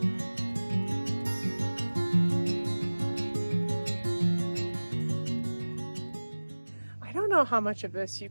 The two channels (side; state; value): both; inverted; correlation -1.00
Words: I don't know how much of this you